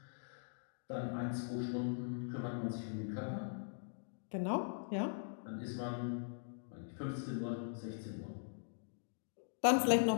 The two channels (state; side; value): silent; right; digital silence